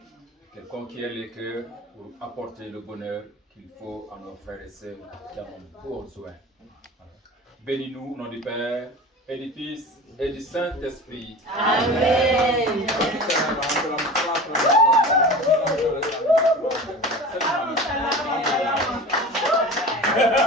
qu'elle conquiert les cœurs pour apporter le bonheur qu'il faut à nos frères et sœurs qui en ont besoin. Bénis-nous au nom du Père et du Fils et du Saint-Esprit. Amen.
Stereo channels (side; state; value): both; normal; correlation 0.35